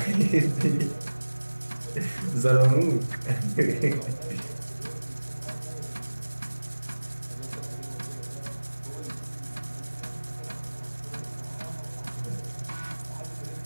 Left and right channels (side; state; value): both; inverted; correlation -1.00